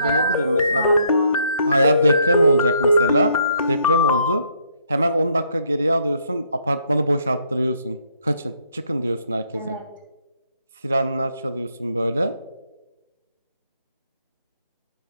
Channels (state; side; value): inverted; both; correlation -0.69